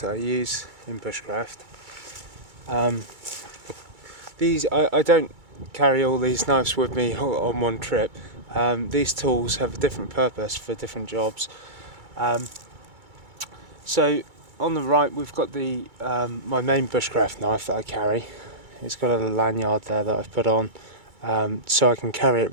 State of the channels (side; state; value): left; late; 2.3 ms